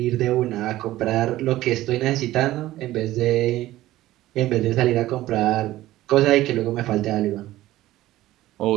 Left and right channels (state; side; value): quieter; left; 15.7 dB